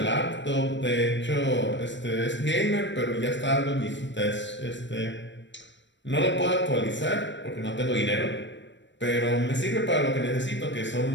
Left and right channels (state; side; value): late; right; 0.53 ms